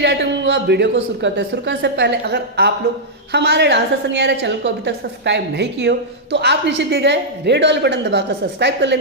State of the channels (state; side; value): normal; both; correlation -0.08